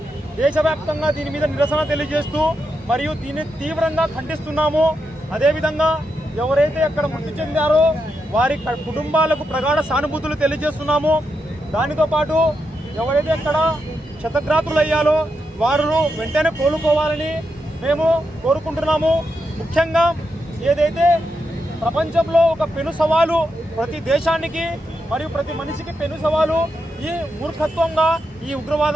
దేశవ్యాప్తంగా దీని మీద నిరసన తెలియజేస్తూ మరియు దీన్ని తీవ్రంగా ఖండిస్తున్నాము. అదేవిధంగా ఎవరైతే అక్కడ మృతి చెందారో వారి కుటుంబాలకు ప్రగాఢ సానుభూతులు తెలియజేస్తున్నాము. దానితో పాటు ఎవరైతే అక్కడ క్షతగాత్రులయ్యారో వారు వెంటనే కోలుకోవాలని మేము కోరుకుంటున్నాము. ముఖ్యంగా ఏదైతే ప్రపంచంలో ఒక పెను సవాలు ప్రతి దేశానికి మరియు ప్రతి మనిషికి పెను సవాలు ఈ మూర్ఖత్వంగా ఈ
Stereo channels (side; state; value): both; normal; correlation 0.84